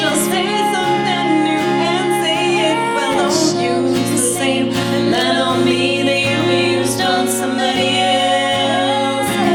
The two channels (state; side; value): identical; both; correlation 1.00